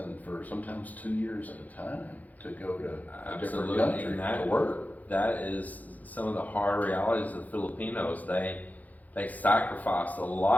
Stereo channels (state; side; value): late; right; 0.079 ms